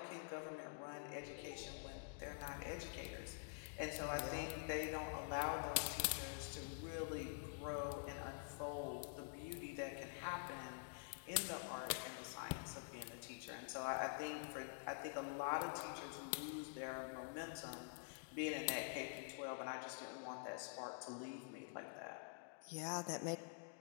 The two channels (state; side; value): silent; right; digital silence